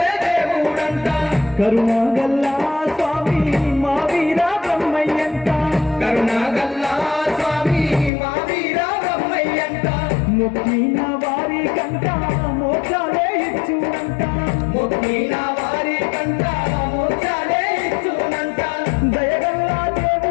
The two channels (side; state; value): right; drops out; at 8.1 s